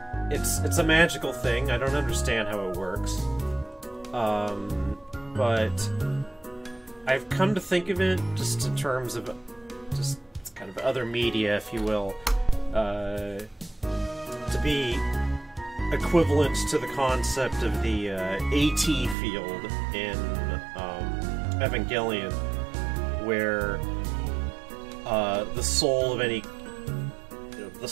it's a magical thing. I don't understand how it works, but I've come to think of it just in terms of just kind of other media, if you will, to be equivalent to the concept of the AT field in Evangelion, where the soul of any, the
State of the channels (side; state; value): left; drops out; at 19.2 s